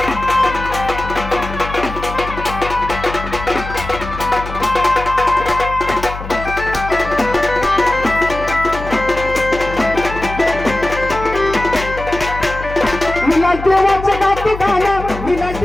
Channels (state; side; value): noise; left; hum, 10 dB below the sound